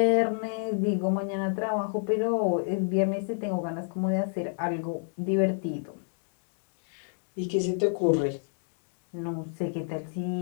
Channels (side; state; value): right; silent; digital silence